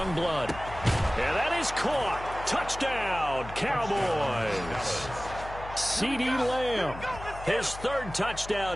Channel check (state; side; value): noise; left; hum, 13 dB below the sound